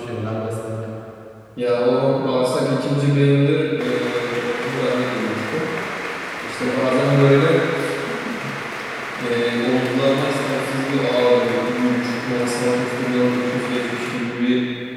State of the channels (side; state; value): both; identical; correlation 1.00